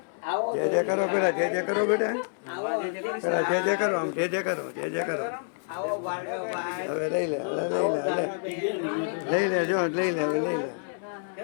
જય જય કરો પેલા, જય જય કરો બેટા, પેલા જય જય કરો, આમ જય જય કરો, જય જય કરો. હવે લઈ લે, હવે લઈ લે, લઈ લે, જો લઈ લે, હવે લઈ લે.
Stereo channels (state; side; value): silent; right; digital silence